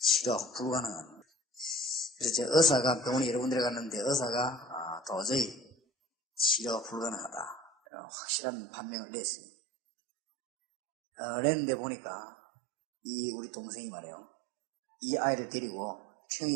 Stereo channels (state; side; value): drops out; left; at 7.7 s